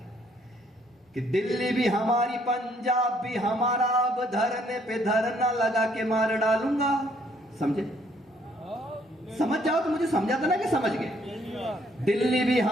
कि दिल्ली भी हमारी पंजाब भी हमारा, अब धरने पे धरना लगा के मार डालूंगा। समझे, समझ जाओ तो मुझे समझा था ना कि समझ गए। दिल्ली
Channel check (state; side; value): normal; both; correlation 0.66